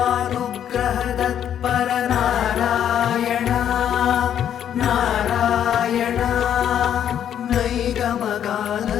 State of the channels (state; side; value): quieter; right; 9.7 dB